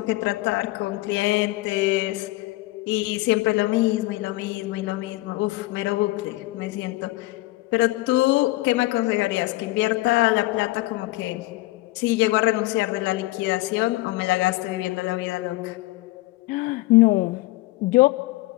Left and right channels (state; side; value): quieter; right; 19.3 dB